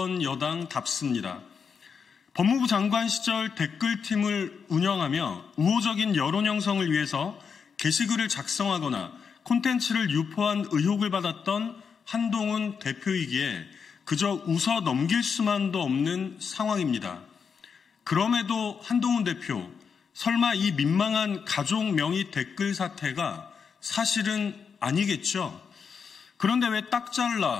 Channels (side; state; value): right; quieter; 6.2 dB